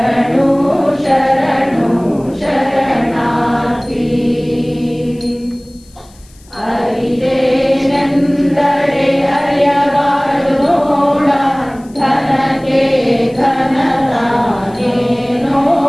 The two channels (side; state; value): left; noise; hiss, 28 dB below the sound